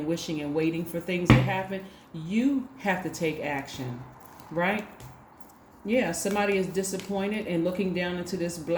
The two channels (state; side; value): identical; both; correlation 1.00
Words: wishing and waiting for things to happen. You have to take action, right? Yeah, somebody is disappointed and looking down into this